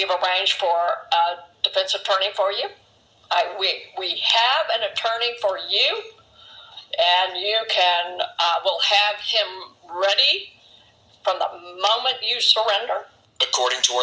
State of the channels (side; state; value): both; identical; correlation 1.00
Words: arranged for a defense attorney for you. We have an attorney for you, and you will have him ready from the moment you surrender. According to